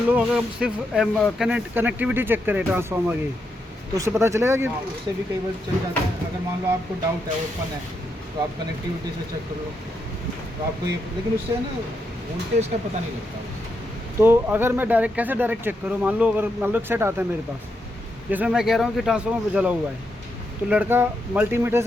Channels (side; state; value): both; normal; correlation 0.82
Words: लो अगर हम सिर्फ कनेक्टिविटी चेक करें ट्रांसफार्मर की, तो उससे पता चलेगा कि हाँ, उससे भी कई बार चल जाता है। अगर मान लो आपको डाउट है, ओपन है, तो आप कनेक्टिविटी से चेक कर लो, तो आपको ये, लेकिन उससे है ना वोल्टेज का पता नहीं लगता। तो अगर मैं कैसे डायरेक्ट चेक करूँ? मान लो एक सेट आता है मेरे पास जिसमें मैं कह रहा हूँ कि ट्रांसफार्मर जला हुआ है, तो लड़का मल्टीमीटर